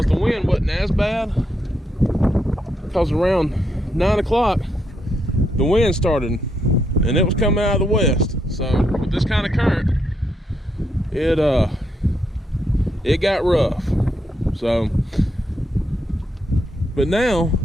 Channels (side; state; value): both; normal; correlation 0.79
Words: the wind wasn't as bad. Because around 9 o'clock, the wind started and it was coming out of the west. So with this kind of current, it got rough. So, but now